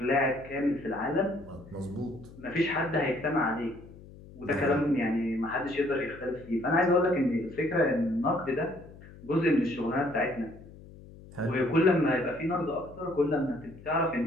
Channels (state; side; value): noise; left; hum, 19 dB below the sound